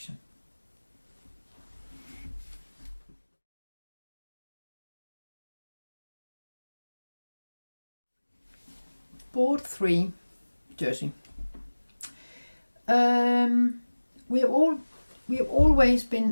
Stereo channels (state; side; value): inverted; both; correlation -1.00